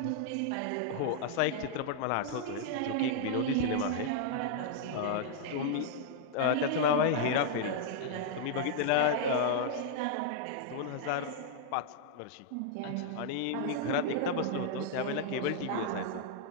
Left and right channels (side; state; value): both; different; correlation -0.01